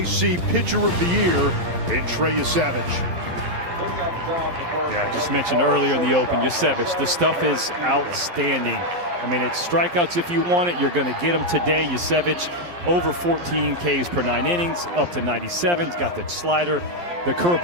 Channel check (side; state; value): left; late; 11 ms